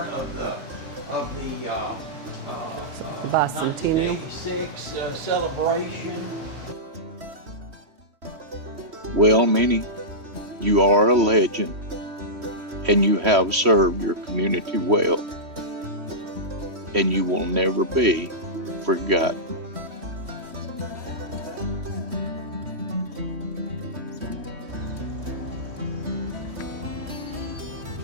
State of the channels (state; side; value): late; left; 3.1 ms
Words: of the bicentennial 1986 celebration. Well, Minnie, you are a legend, and you have served your community well, and you will never be forgotten.